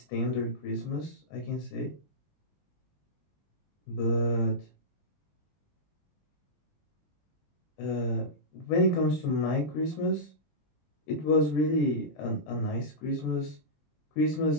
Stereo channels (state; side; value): late; right; 20 ms